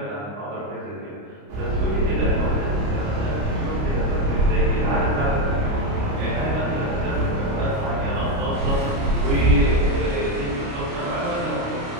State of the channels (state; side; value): late; left; 29 ms